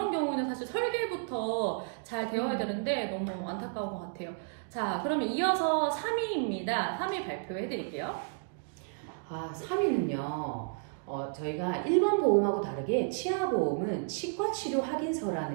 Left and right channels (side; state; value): left; silent; digital silence